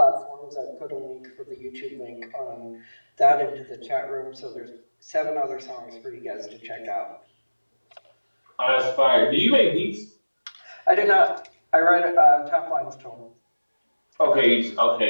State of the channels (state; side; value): inverted; both; correlation -1.00